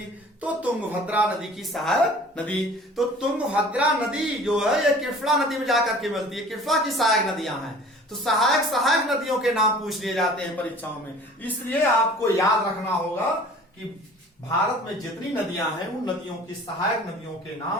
तो तुंगभद्रा नदी की सहायक नदी। तो तुंगभद्रा नदी जो है ये कृष्णा नदी में जाकर के मिलती है, कृष्णा की सहायक नदियां हैं। तो सहायक नदियों के नाम पूछ लिए जाते हैं परीक्षाओं में। इसलिए आपको याद रखना होगा कि भारत में जितनी नदियां हैं उन नदियों की सहायक नदियों के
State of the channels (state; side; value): normal; both; correlation 0.47